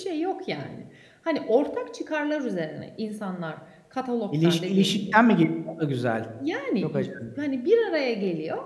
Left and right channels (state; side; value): identical; both; correlation 1.00